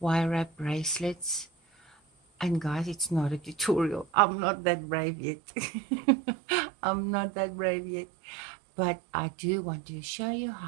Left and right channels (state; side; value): drops out; left; at 4.0 s